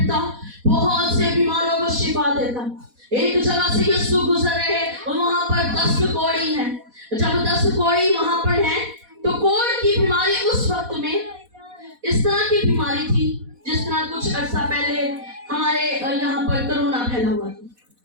बहुत से बीमारों को शिफा देता। एक जगह से यीशु गुजर रहे और वहां पर 10 कोड़ी हैं। जब 10 कोड़ी वहां पर हैं तो कोढ़ की बीमारी उस वक्त में इस तरह की बीमारी थी जिस तरह कुछ अर्सा पहले हमारे यहाँ पर कोरोना फैला हुआ था।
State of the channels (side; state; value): left; late; 4.1 ms